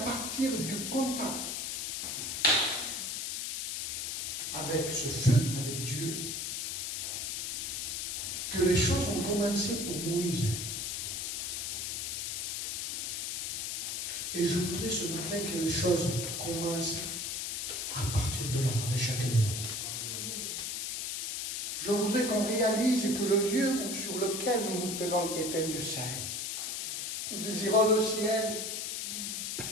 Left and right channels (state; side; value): noise; left; hiss, 2 dB below the sound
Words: du contact avec ce feu, avec Dieu, que les choses ont commencé pour Moïse. Et je voudrais ce matin que les choses commencent à partir de là, avec chacun de nous. Je voudrais qu'on réalise que le lieu sur lequel nous nous tenons est un Dieu saint. Nous désirons le ciel.